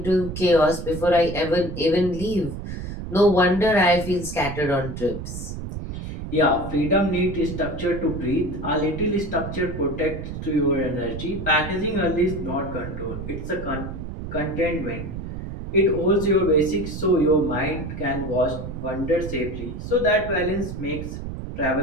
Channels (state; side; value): noise; right; rumble, 8 dB below the sound